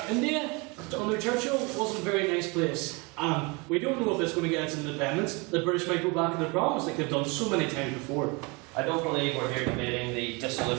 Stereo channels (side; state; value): left; quieter; 28.5 dB